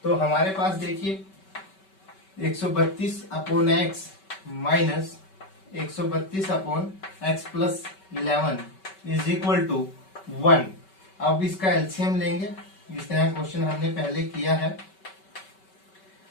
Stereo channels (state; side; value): late; right; 5.2 ms